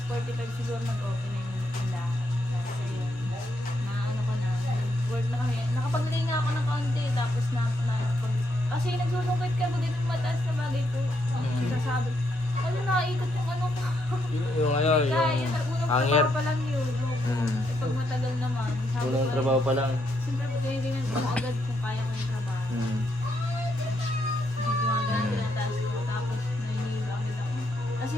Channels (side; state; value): both; normal; correlation 0.77